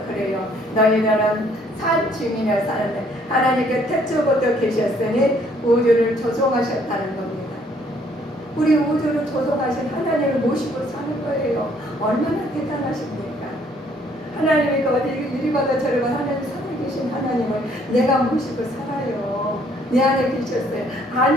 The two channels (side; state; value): both; normal; correlation 0.64